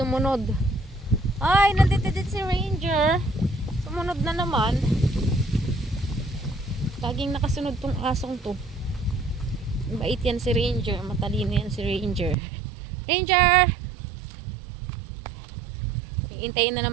Ay, nandito din si Ranger. Sumunod na naman. Laging nakasunod tong asong to. Bait yan si Ranger. Matalino yan si Ranger. Ranger! Iintayin na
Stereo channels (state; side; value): drops out; left; at 12.4 s